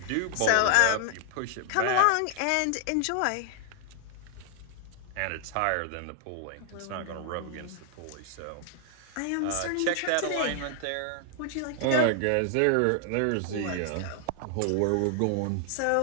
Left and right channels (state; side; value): different; both; correlation 0.00